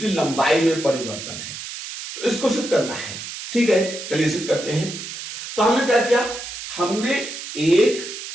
लंबाई में परिवर्तन है। तो इसको सिद्ध करना है। ठीक है, चलिए सिद्ध करते हैं। तो हमने क्या किया, हमने एक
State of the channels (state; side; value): noise; right; hiss, 9 dB below the sound